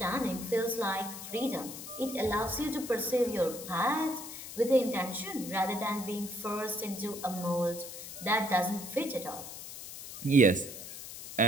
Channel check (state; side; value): noise; left; hiss, 11 dB below the sound